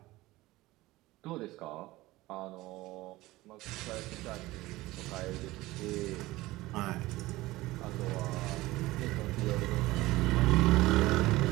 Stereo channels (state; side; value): quieter; left; 18.7 dB